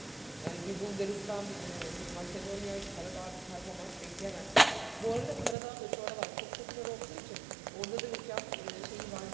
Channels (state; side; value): drops out; left; at 5.6 s